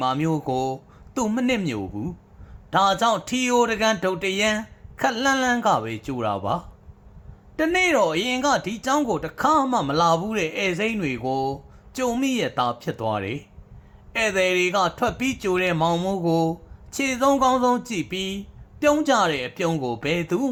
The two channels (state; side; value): identical; both; correlation 1.00